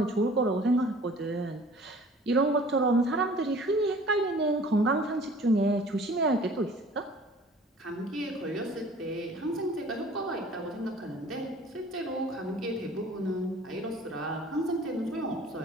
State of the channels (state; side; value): normal; both; correlation 0.49